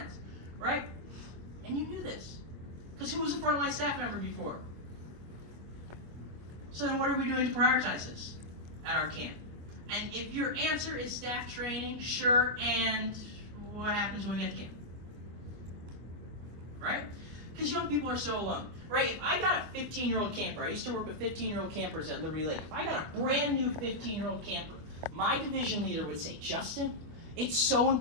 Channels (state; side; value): late; left; 25 ms